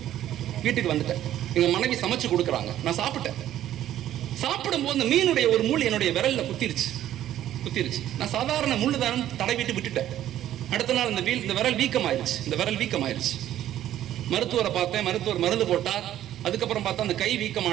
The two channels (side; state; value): left; quieter; 12.3 dB